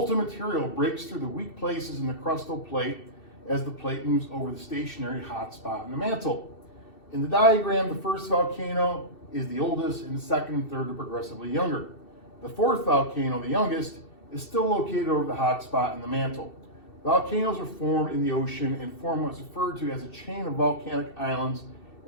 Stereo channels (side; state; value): right; late; 2.7 ms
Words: material breaks through the weak places in the crustal plate as the plate moves over the stationary hot spot in the mantle. In the diagram, the first volcano is the oldest and the second and third are progressively younger. The fourth volcano, the youngest, is still located over the hot spot in the mantle. Volcanoes are formed in the ocean and form what is referred to as a chain of volcanic islands